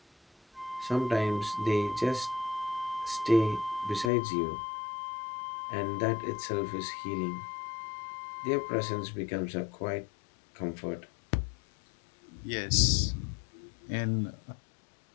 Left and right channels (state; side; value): drops out; right; at 4.1 s